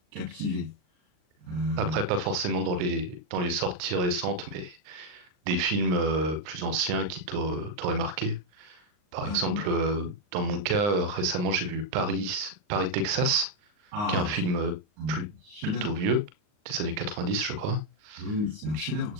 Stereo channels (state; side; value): late; left; 39 ms